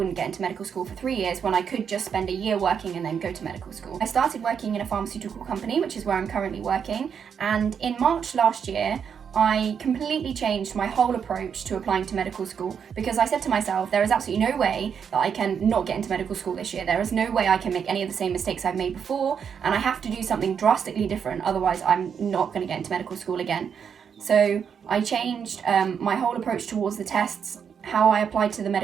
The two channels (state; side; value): quieter; left; 7.2 dB